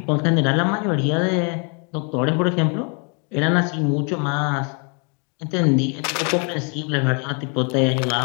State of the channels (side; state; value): right; quieter; 37.0 dB